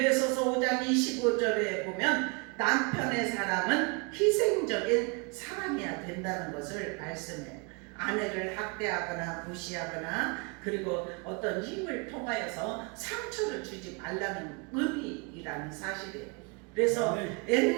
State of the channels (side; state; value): left; quieter; 32.1 dB